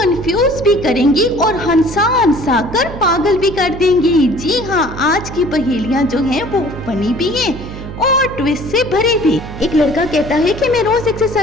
भी करेंगी और हंसा हंसा कर पागल भी कर देंगी। जी हाँ, आज की पहेलियां जो हैं वो फनी भी हैं और ट्विस्ट से भरी भी। एक लड़का कहता है कि मैं रोज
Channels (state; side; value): noise; right; hum, 11 dB below the sound